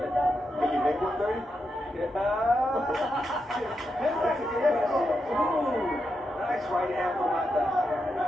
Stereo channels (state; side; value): normal; both; correlation 0.85